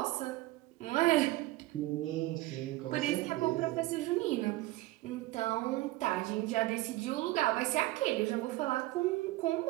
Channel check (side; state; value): left; quieter; 18.3 dB